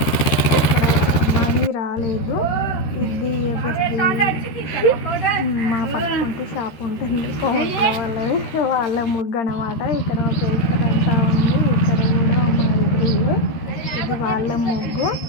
మనీ రాలేదు. ఇది మా పక్కంటే షాప్ ఉంటుంది కోట్ల వాళ్ళది, వాళ్ళ ముగ్గు అన్నమాట. ఇక్కడ ఒక అంతా ఉంది. ఇక్కడ కూడా మా ఎదురు ఇది వాళ్ళ ముగ్గు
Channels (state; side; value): late; right; 13 ms